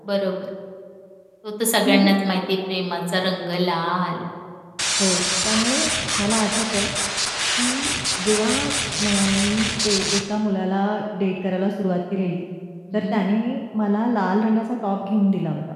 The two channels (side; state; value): both; identical; correlation 1.00